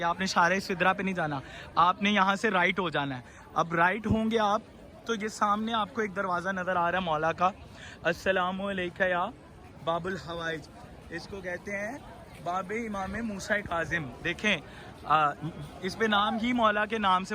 आपने शारे सिदरा पे नहीं जाना, आपने यहाँ से राइट हो जाना है। अब राइट होंगे आप तो ये सामने आपको एक दरवाज़ा नज़र आ रहा है मौला का, अस्सलामु अलैकुम या बाबुल हवाइज, इसको कहते हैं बाबे इमाम मूसा काज़िम। देखें इस पे नाम ही मौला के नाम से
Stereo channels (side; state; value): both; identical; correlation 1.00